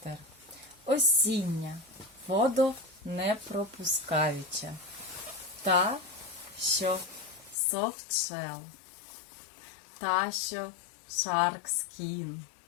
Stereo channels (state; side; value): drops out; right; at 7.6 s